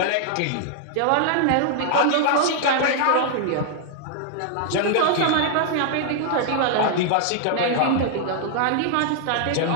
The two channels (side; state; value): both; different; correlation -0.01